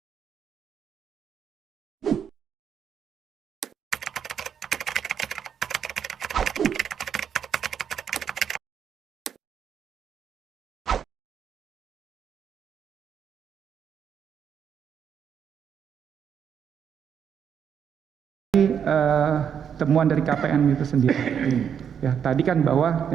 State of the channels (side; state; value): left; quieter; 8.0 dB